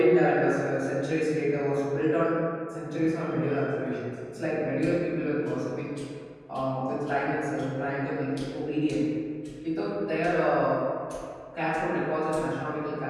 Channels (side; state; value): both; identical; correlation 1.00